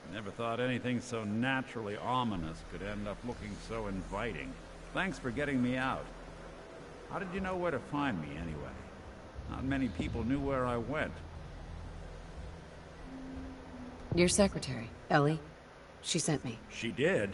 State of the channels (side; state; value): both; identical; correlation 1.00